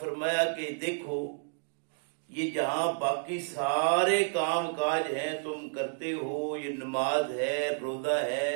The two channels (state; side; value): silent; left; digital silence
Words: کہ دیکھو یہ جہاں باقی سارے کام کاج ہیں تم کرتے ہو، یہ نماز ہے، روزہ